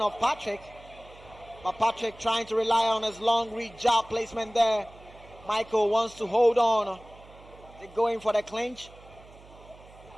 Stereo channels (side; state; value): right; noise; hum, 22 dB below the sound